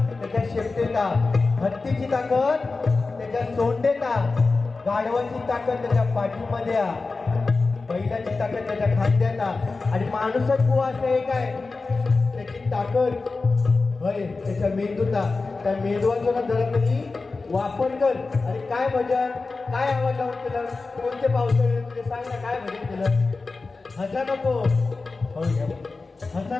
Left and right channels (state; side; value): quieter; right; 3.9 dB